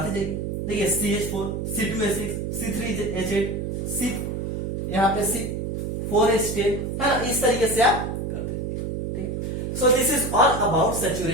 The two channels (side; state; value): right; noise; hum, 3 dB below the sound